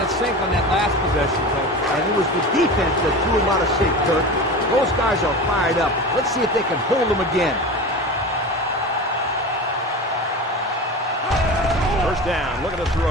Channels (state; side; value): normal; both; correlation 0.30